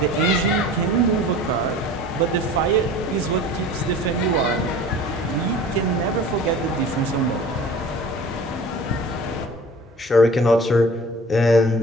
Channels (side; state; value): both; normal; correlation 0.43